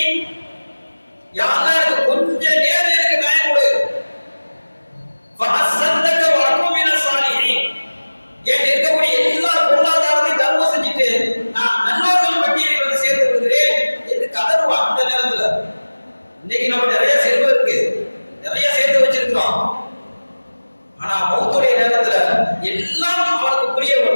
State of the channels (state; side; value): inverted; both; correlation -1.00